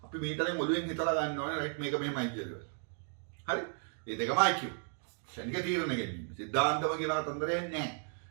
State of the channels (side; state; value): left; silent; 55 dB below the other